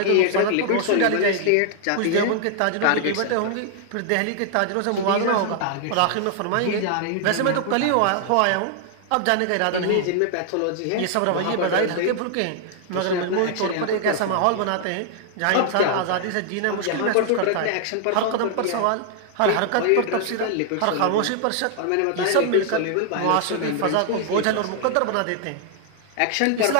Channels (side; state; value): both; different; correlation 0.00